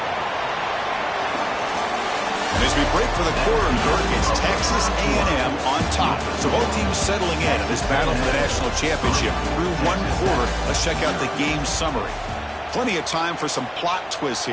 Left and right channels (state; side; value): identical; both; correlation 1.00